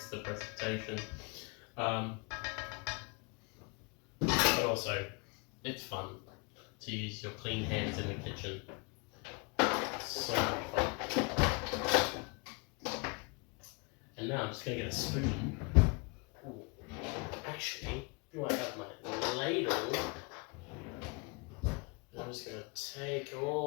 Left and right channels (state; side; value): quieter; right; 32.4 dB